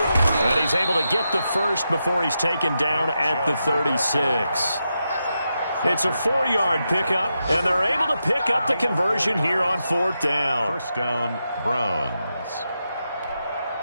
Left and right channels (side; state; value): both; inverted; correlation -0.87